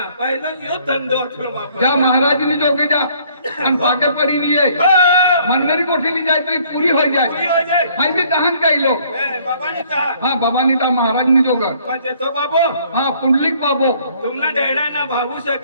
पहिलं यो धंदो अथवा बापा. जा महाराज ने जो जा आणि भागे परी लिए मनमेरी कोठी ली जाए तो ये पूरी हो पुरी जाए. हो जाए. हाई भी दहन कई लोग बाबानी कहा हाँ बाबा नीता महाराज ने जो गर पण तो बाबू हाँ पुंडलिक बाबो तुमना डेडा ना भागू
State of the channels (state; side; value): inverted; both; correlation -0.61